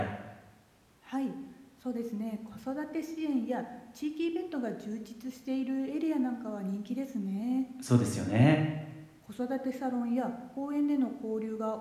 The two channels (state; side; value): identical; both; correlation 1.00